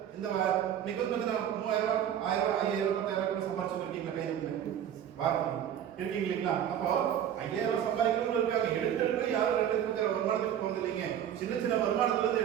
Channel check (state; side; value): quieter; left; 9.9 dB